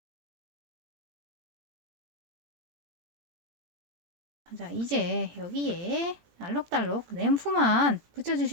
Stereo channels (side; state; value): left; late; 17 ms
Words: 자, 이제 여기에 알록달록 램프만